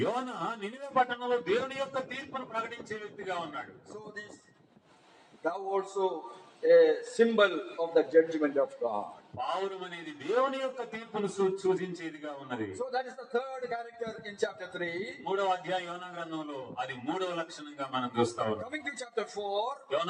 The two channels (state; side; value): identical; both; correlation 1.00